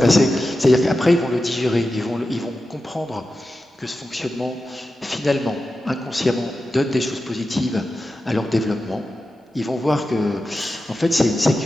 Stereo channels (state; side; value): normal; both; correlation 0.92